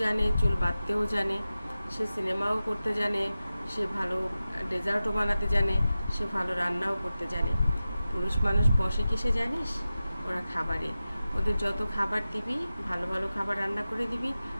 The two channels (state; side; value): inverted; both; correlation -0.94